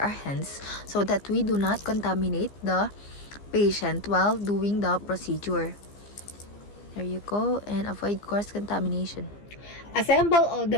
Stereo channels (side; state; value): right; late; 15 ms